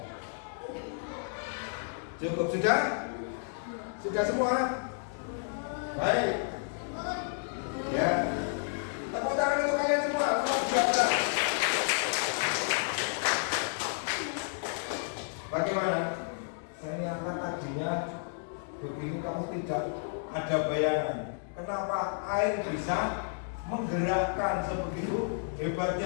Cukup sudah? Sudah semua? Baik. Ya. Tepuk tangan untuk kalian semua. Luar biasa. Bagaimana? Saya nyangka tadinya begini kamu tidak ada bayangan. Kenapa air bisa menggerakkan sebegitu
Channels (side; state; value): right; silent; digital silence